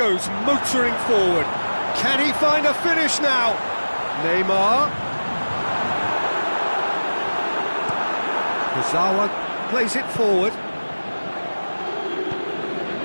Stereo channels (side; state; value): both; inverted; correlation -1.00